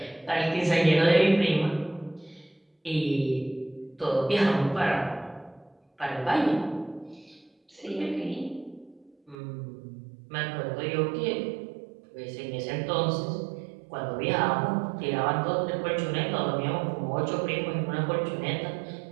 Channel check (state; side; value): drops out; left; at 9.3 s